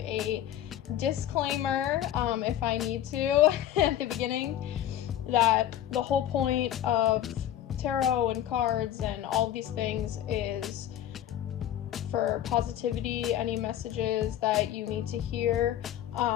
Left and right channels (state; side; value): quieter; right; 11.6 dB